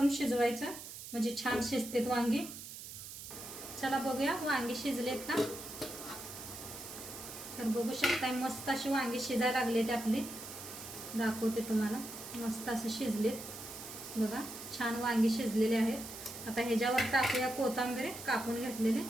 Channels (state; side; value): noise; right; hiss, 11 dB below the sound